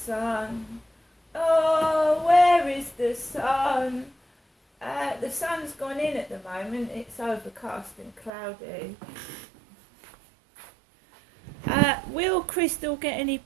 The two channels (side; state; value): left; drops out; at 8.3 s